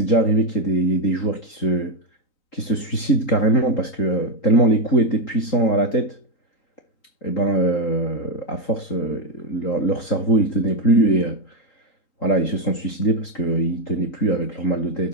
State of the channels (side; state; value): right; late; 3.8 ms